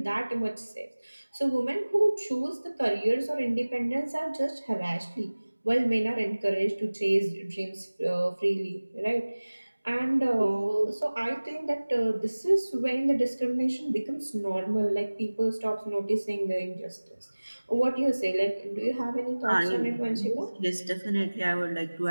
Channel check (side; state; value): both; inverted; correlation -1.00